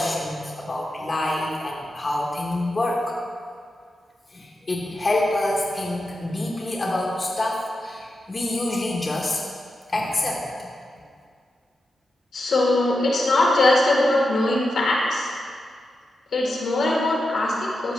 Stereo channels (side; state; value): both; normal; correlation 0.89